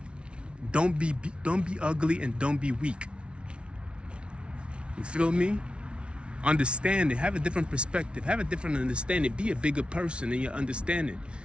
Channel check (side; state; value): left; late; 0.058 ms